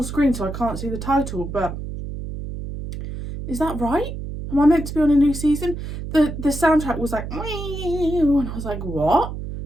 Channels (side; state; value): right; noise; hum, 7 dB below the sound